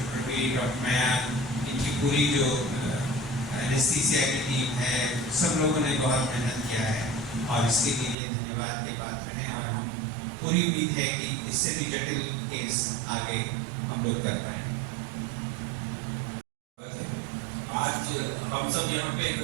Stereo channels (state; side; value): drops out; left; at 8.2 s